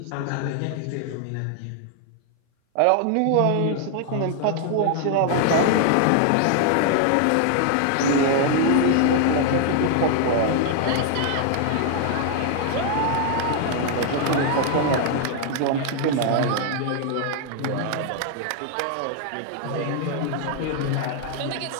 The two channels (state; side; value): different; both; correlation 0.00